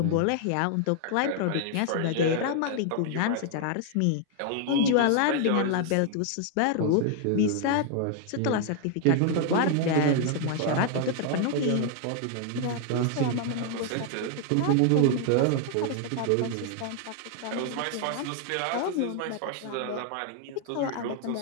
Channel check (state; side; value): different; both; correlation 0.00